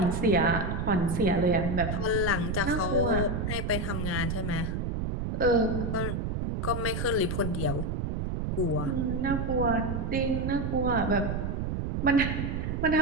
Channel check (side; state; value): right; noise; rumble, 1 dB below the sound